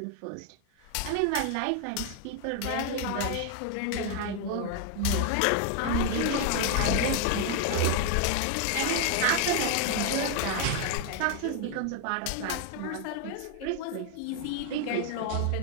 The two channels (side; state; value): both; different; correlation 0.00